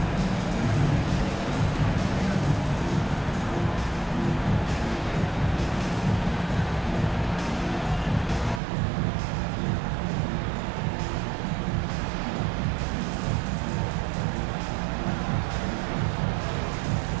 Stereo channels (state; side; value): drops out; left; at 8.6 s